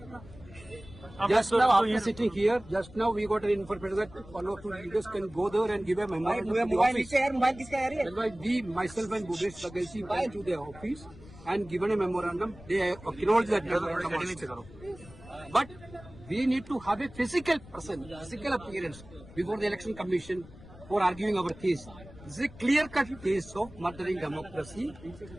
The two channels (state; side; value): noise; left; rumble, 19 dB below the sound